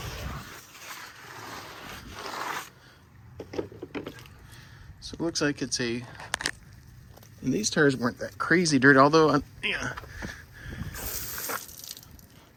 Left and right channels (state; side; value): identical; both; correlation 1.00